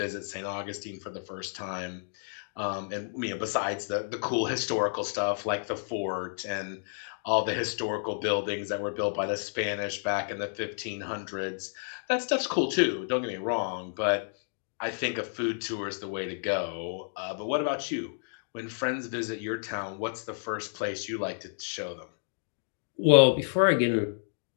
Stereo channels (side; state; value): right; silent; digital silence